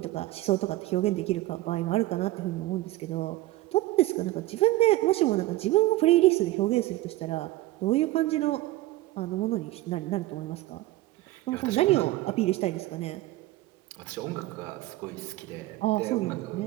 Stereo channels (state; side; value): quieter; left; 17.3 dB